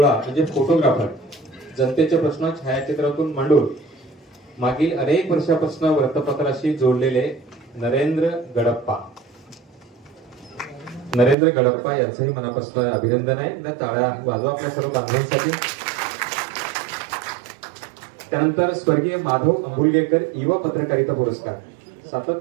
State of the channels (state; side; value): drops out; left; at 11.4 s